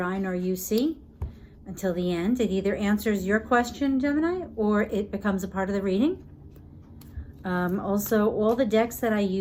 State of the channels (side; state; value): both; identical; correlation 1.00